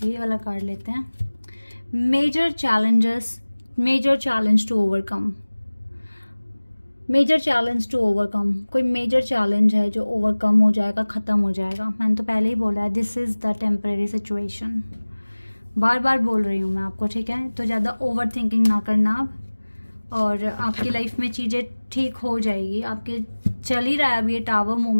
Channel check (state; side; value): inverted; both; correlation -1.00